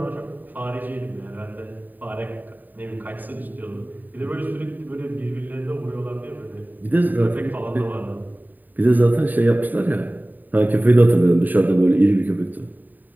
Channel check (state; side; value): late; left; 0.087 ms